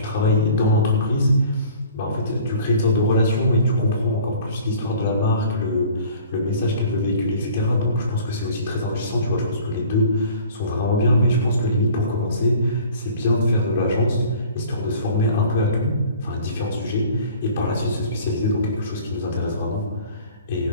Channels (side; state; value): both; inverted; correlation -0.48